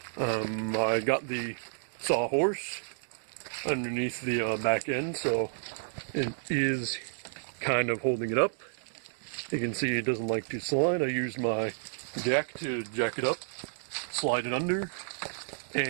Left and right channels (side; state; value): left; silent; digital silence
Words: I got the sawhorse underneath the back end, so it is kind of holding it up. You can see it doesn't like to slide. I used my jack to jack it up, slide it under,